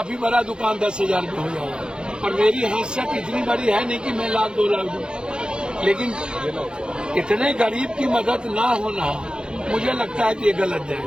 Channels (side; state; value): left; late; 0.049 ms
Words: बड़ा दुकान 10,000 में हो जाएगा। और मेरी हैसियत इतनी बड़ी है नहीं कि मैं 1,00,000 2,00,000 दूं, लेकिन इतने गरीब की मदद ना होना मुझे लगता है कि ये गलत